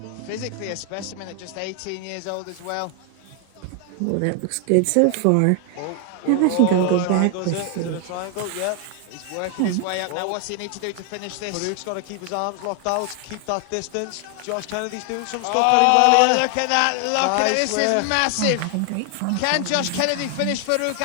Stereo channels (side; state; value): both; different; correlation 0.00